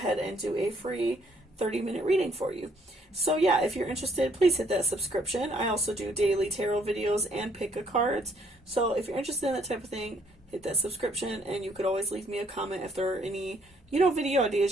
and do a free 30-minute reading for you. So yeah, if you're interested, please hit that subscription. I also do daily tarot videos and pick-a-cards. So if you're interested in that type of thing, hit that subscription, and you could always leave me a comment if there are any, you know, video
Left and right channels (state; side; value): normal; both; correlation 0.66